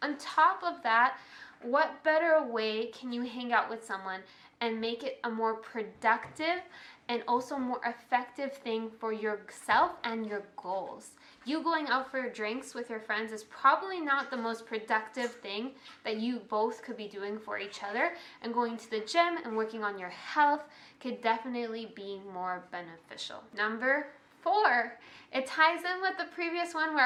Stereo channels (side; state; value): both; identical; correlation 1.00